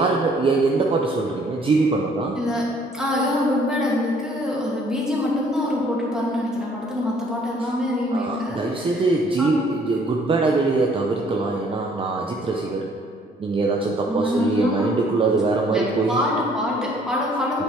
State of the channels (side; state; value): both; normal; correlation 0.61